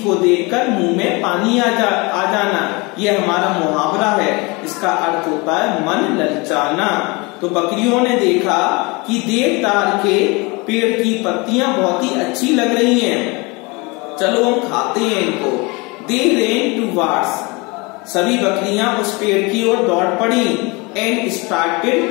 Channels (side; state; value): right; quieter; 26.7 dB